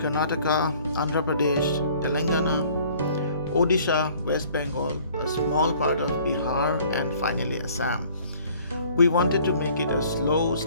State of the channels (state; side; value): inverted; both; correlation -0.55